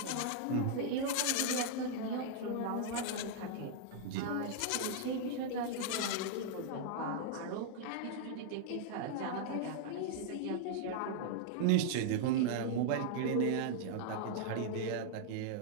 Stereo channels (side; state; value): both; different; correlation -0.01